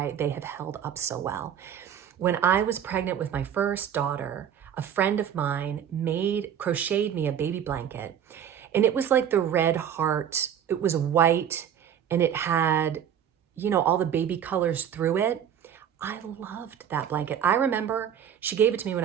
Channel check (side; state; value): left; quieter; 9.1 dB